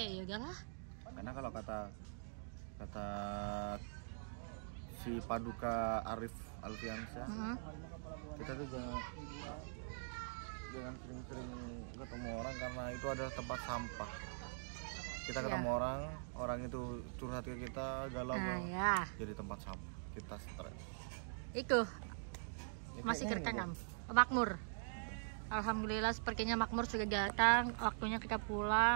ya udahlah. Karena kalau kata si Paduka Arif Alfiansyah, kita tuh jangan sering-sering ketemu orang karena itu adalah tempat sampah. Kita ketemu orang itu curhat ke kita, galau, Nah, ya. jadi tempat sampah. Kita stres. Itu masih kerekam. Makmur. Alhamdulillah sepertinya Makmur sudah datang. Waktunya kita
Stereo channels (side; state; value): left; silent; digital silence